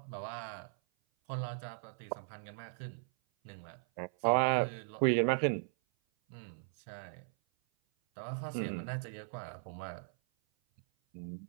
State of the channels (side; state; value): left; silent; 53 dB below the other